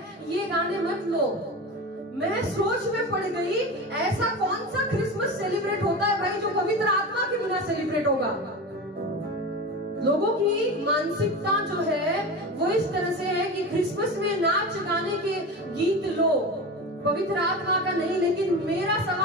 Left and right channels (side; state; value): both; normal; correlation 0.27